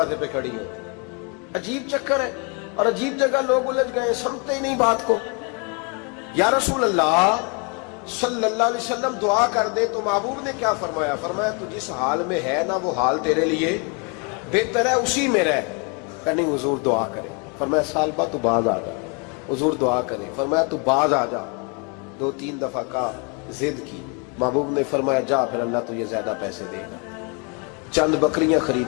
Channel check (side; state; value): right; quieter; 34.2 dB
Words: پہ کھڑی ہوتی. عجیب چکر ہے اور عجیب جگہ لوگ الجھ گئے، سمجھتے ہی نہیں بات کو. یا رسول اللہ صلی اللہ علیہ وسلم دعا کر دے تو محبوب نے کیا فرمایا؟ فرمایا تو جس حال میں ہے نا وہ حال تیرے لیے بہتر ہے، اسی میں رہ. کہ نہیں حضور دعا کرے. فرمایا سال بعد تو باز آ جا. حضور دعا کرے. فرمایا تو باز آ جا. 2-3 دفعہ کا ضد کی. محبوب نے فرمایا جا پھر اللہ تجھے زیادہ پیسے دے گا. چند بکریاں